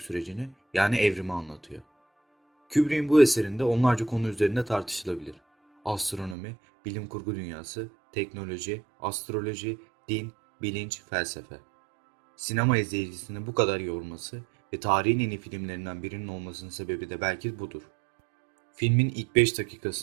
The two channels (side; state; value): left; drops out; at 6.4 s